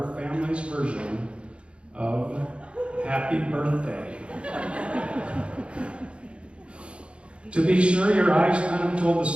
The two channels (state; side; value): late; left; 0.058 ms